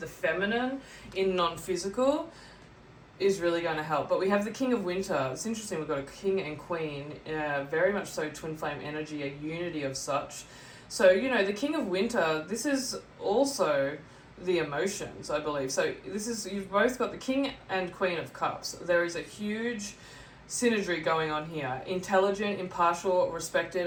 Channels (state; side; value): identical; both; correlation 1.00